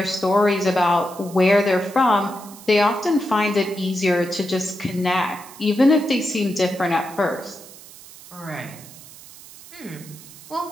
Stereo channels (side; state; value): right; noise; hiss, 19 dB below the sound